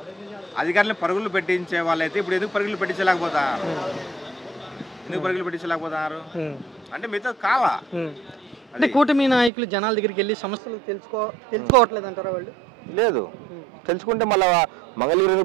అధికారులను పరుగులు పెట్టించే వాళ్ళైతే ఇప్పుడు ఎందుకు పరుగులు పెట్టించలేకపోతారు? ఎందుకు పరుగులు పెట్టించలేకపోతారు అంటే మీతో కావా? అంటే కూటమి నాయకులు జనాల దగ్గరికి వెళ్ళి సమస్యలు తెలుసుకోవట్లేదు అంటారా? వాళ్ళు లేదు, తెలుసుకుంటే మళ్ళీ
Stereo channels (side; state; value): left; drops out; at 9.5 s